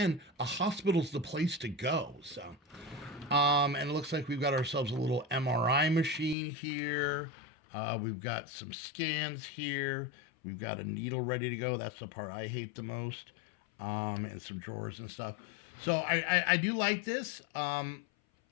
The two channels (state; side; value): drops out; right; at 6.4 s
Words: a hospital's the place to go. So, and it looks like we've got ourselves a little MRI machine here. We've got some scans here. We've got a needle ready to go. That's the part I hate the most. And some drawers and stuff. So I do like this. I